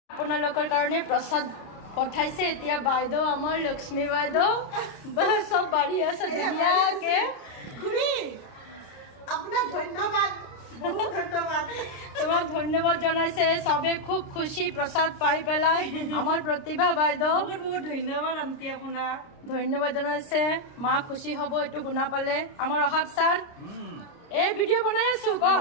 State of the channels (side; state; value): right; late; 30 ms